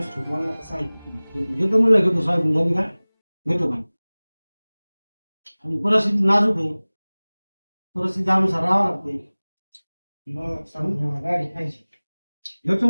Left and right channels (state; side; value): inverted; both; correlation -1.00